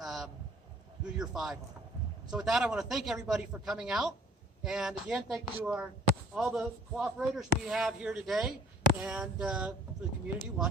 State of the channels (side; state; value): both; normal; correlation 0.54